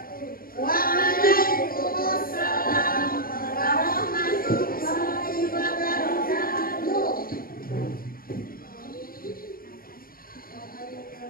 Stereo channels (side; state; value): right; late; 0.42 ms